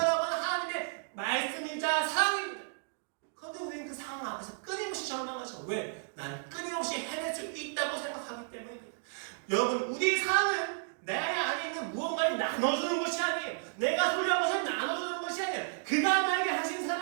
하는 하나님의 말씀이자 사랑입니다. 그런데 우리는 그 상황 앞에서 끊임없이 절망하죠. 왜? 난 끊임없이 해낼 수 있다고 생각하기 때문입니다. 여러분, 우리 상황은 내 안에 있는 무언가를 나눠주는 것이 아니에요. 내가 소유한 것을 나눠주는 것이 아니에요. 그가 나에게 하신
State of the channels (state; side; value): silent; left; digital silence